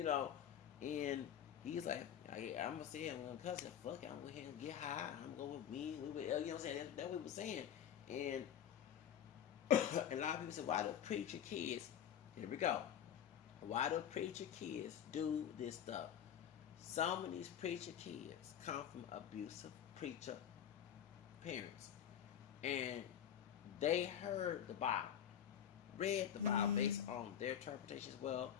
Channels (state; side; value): quieter; right; 9.5 dB